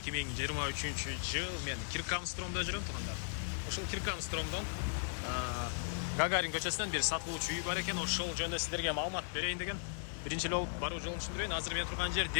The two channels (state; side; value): silent; right; digital silence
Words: жыл. Мен Киркамстромда жүрөм туғандар. Ушул Киркамстромдон Гагарин көчөсүнөн бир сатылуучу үй бар экен. Ошол жөнүндө сиздерге маалымат берейин деген. Биринчи эле болуп баруу жолун түшүндүрөйүн. Азыр мен турган жер